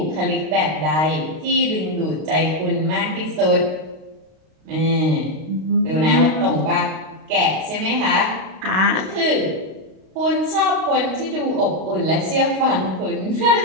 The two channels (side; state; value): left; late; 32 ms